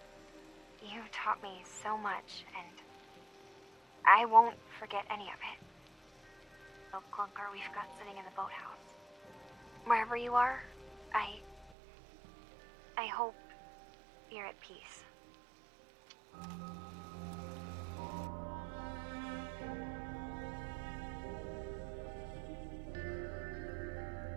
You taught me so much, and I won't forget any of it. The clunker we've got sitting in the boathouse. Wherever you are, I hope you're at peace.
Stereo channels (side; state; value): left; drops out; at 11.7 s